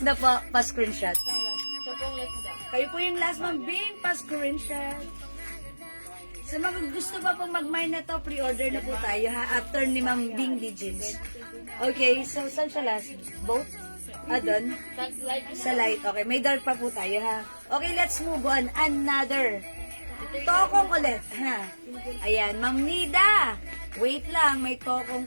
na po, pa-screenshot. Siyang last. Siya pong last daw. Kayo po yung last, Ma'am Bing, pa-screenshot. Sa mga gusto pa pong mag-mine na to, pre-order na po tayo, ha? After ni Ma'am Bing D. James. Okay, so saan siya last? Both? Doon? That's light. Sa light. Okay, may dark pa po tayo, ha? Okay, let's move on. Another. Tokong ulit, ha? Ayan, Ma'am Nida. Wait lang, may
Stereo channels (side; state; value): both; inverted; correlation -1.00